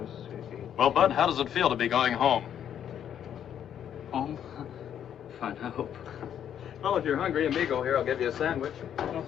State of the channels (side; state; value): right; quieter; 9.5 dB